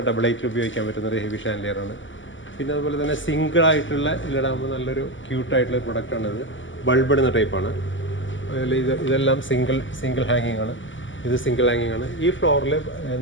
ഡബിൾ ഹൈറ്റിൽ ഉപയോഗിക്കാൻ പറ്റുന്ന ഒരു ഹെവി ഷാൻലിയറാണ്. പിന്നെ അതുപോലെ തന്നെ സിംഗിൾ ആയിട്ടുള്ള ഇതിലിടാകുമ്പോൾ നല്ലൊരു ക്യൂട്ടായിട്ടുള്ള ഒരു പ്രൊഡക്റ്റാണ്. ഇത് ബൾബ് ഇടുന്ന ടൈപ്പാണ്. അതിൽ ഇതെല്ലാം സിംഗിൾ ഹാങ്ങിങ് ആണ്. ഇത് സിംഗിൾ ഹാങ്ങിങ് ആണ്. ഈ ഫ്ലോറിൽ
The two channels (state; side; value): late; right; 0.55 ms